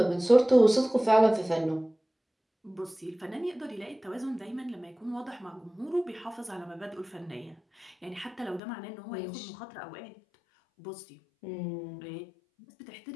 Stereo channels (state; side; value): drops out; right; at 8.6 s